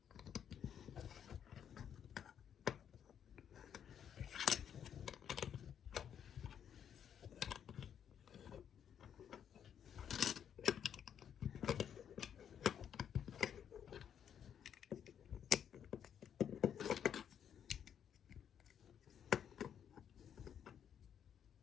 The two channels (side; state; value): right; quieter; 8.7 dB